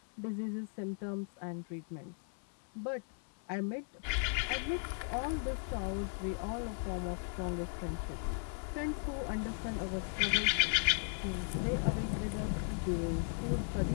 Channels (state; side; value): silent; right; 53 dB below the other